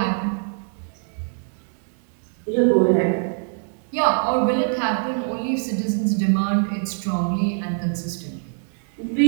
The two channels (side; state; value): left; silent; 63 dB below the other